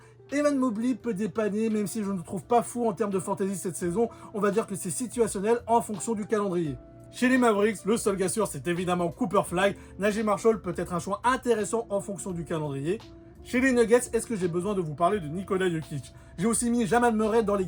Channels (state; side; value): identical; both; correlation 1.00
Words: Evan Mobley peut dépanner, même si je ne le trouve pas fou en termes de fantasy cette saison. On va dire que c'est situationnel en fonction du calendrier. Chez les Mavericks, le seul gars sûr, c'est évidemment Cooper Flag. Najee Marshall peut être un choix intéressant en fonction du calendrier. Chez les Nuggets, est-ce que j'ai besoin de vous parler de Nikola Jokic? J'ai aussi mis Jamal Murray dans les